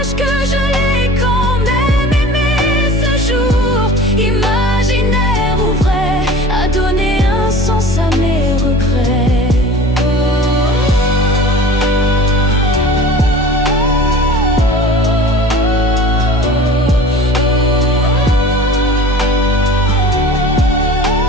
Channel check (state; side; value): normal; both; correlation 0.41